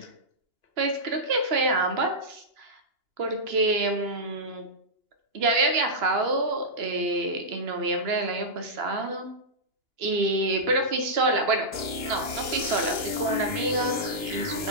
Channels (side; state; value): left; late; 2.9 ms